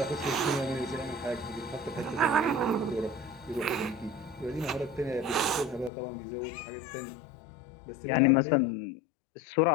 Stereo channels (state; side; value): drops out; right; at 5.9 s